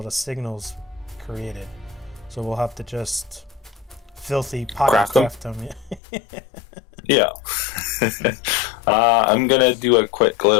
the signals created. So we'll have to just filthy pocket craft them. Yeah. I'm going to do a quick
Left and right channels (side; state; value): right; drops out; at 6.0 s